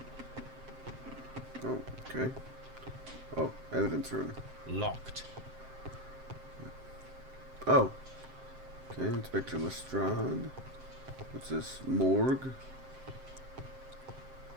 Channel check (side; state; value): left; late; 7.6 ms